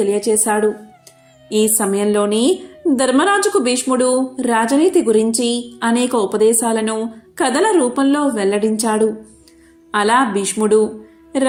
ఈ సమయంలోనే ధర్మరాజుకు భీష్ముడు రాజనీతి గురించి అనేక ఉపదేశాలను కథల రూపంలో వెల్లడించాడు. అలా భీష్ముడు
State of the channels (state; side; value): identical; both; correlation 1.00